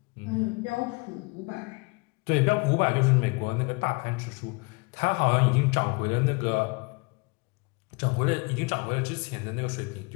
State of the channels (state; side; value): quieter; right; 29.4 dB